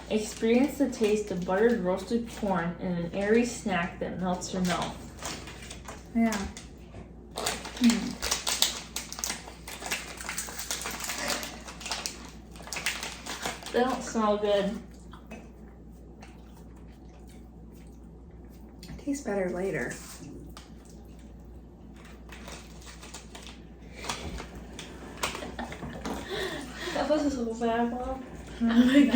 Experience the taste of buttered roasted corn in an airy snack that melts your mouth. Yeah. They don't smell good. It tastes better later. That was so bad, Mom. I'm gonna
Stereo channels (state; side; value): identical; both; correlation 1.00